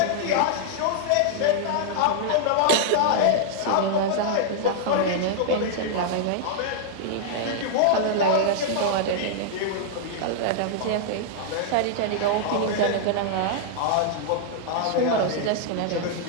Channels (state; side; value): different; both; correlation -0.01